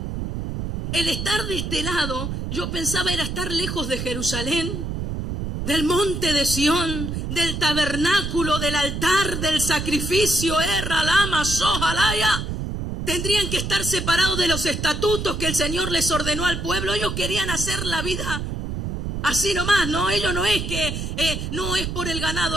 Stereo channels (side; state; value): right; noise; rumble, 4 dB below the sound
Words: El estar de este lado, yo pensaba, era estar lejos de Jerusalén, del monte de Sión, del tabernáculo, del altar, del sacrificio, Ralama, Sojalaya. Tendrían que estar separados de los estatutos que el Señor les ordenó al pueblo. Ellos querían hacer la vida así nomás, no, ellos no es que no es por el